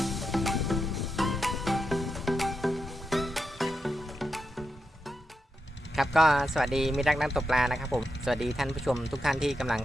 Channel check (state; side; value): normal; both; correlation 0.86